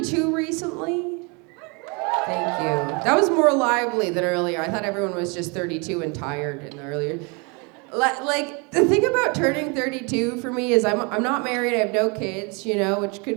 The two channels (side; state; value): left; quieter; 31.4 dB